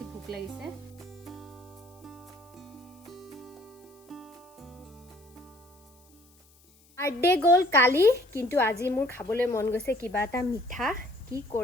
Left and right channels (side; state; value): left; noise; hiss, 29 dB below the sound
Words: ভোক লাগিছে বাৰ্থডে গ'ল কালি কিন্তু আজি মোৰ খাবলৈ মন গৈছে কিবা এটা মিঠা কি